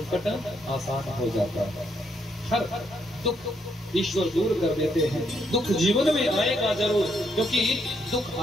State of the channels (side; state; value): both; normal; correlation 0.75